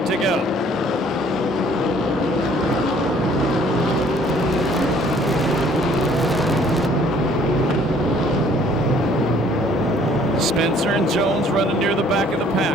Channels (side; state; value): both; normal; correlation 0.58